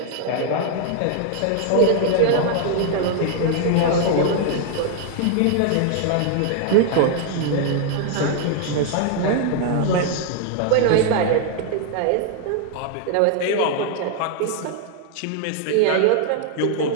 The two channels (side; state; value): both; different; correlation 0.00